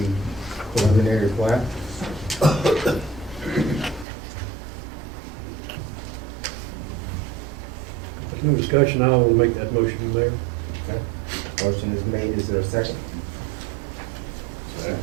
preliminary plat? discussion, I will make that motion, Mayor. Okay. Motion is made, is there a second?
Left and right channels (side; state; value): left; drops out; at 4.0 s